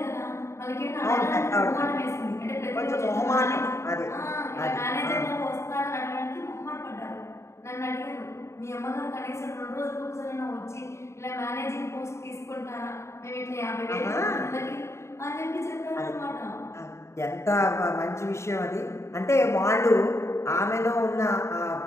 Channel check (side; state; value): right; late; 0.13 ms